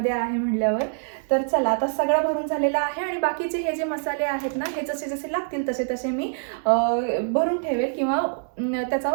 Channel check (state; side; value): silent; left; digital silence